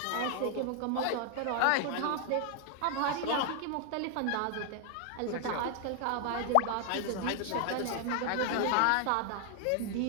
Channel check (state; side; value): different; both; correlation 0.00